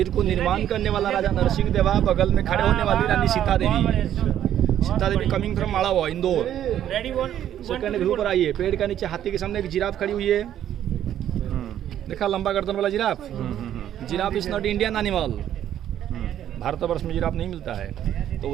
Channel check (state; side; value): quieter; left; 11.0 dB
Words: को निर्माण करने वाला राजा नरसिंह देवा, बगल में खड़े होने वाली रानी सीता देवी। सीता देवी कमिंग फ्रॉम माड़ावा, इंदौर। सेकंड व्यू पर आइए। पेड़ का नीचे हाथी के सामने एक जिराफ खड़ी हुई है। देखा लंबा गर्दन वाला giraffe. Giraffe is not Indian animal. Bharatvarsh में जिराफ नहीं मिलता है। तो